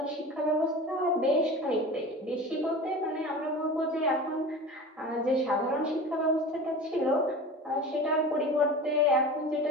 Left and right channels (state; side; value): normal; both; correlation 0.34